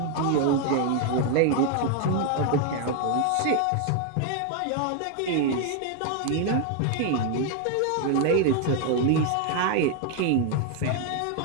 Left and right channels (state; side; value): different; both; correlation 0.01